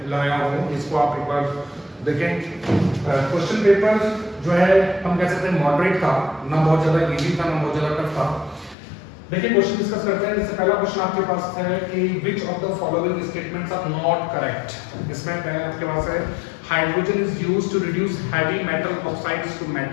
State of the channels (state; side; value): drops out; right; at 8.8 s